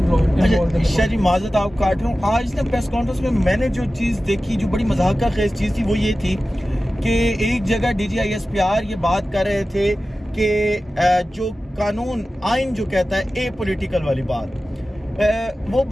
شاہ جی معذرت آپ کاٹ رہا ہوں, آج نا پریس کانفرنس میں میں نے جو چیز دیکھی جو بڑی مضحکہ خیز چیز تھی وہ یہ تھی کہ ایک جگہ D G I S P R یہ بات کر رہے تھے کہ جو قانون آئین جو کہتا ہے اے پولیٹیکل والی بات, وہ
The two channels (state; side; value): normal; both; correlation 0.95